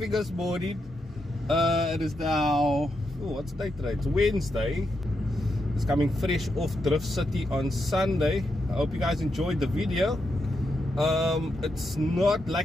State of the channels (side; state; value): both; normal; correlation 0.83